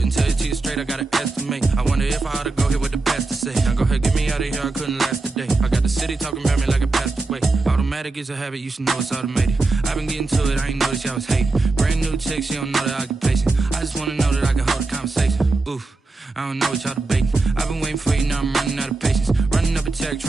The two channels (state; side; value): quieter; left; 3.4 dB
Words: tell you to you straight, I gotta estimate. I wonder if I ought to go here with the best to say. Now go ahead, get me out of here, I couldn't last today. I got the city talking about me like I passed away. Automatic is a habit, you should know it's automated. I've been getting to it, I ain't noticed y'all was hating. Brand new chick, she don't know the occupation. I just wanna know that I can hold a conversation. Oof, I don't know what y'all debating. I've been waiting for you, now I'm running out of patience. Running up a check,